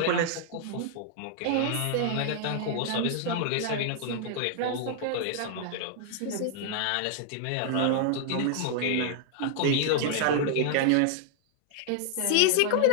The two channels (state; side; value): different; both; correlation -0.01